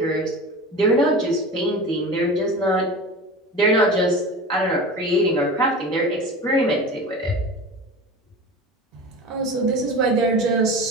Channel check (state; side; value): normal; both; correlation 0.32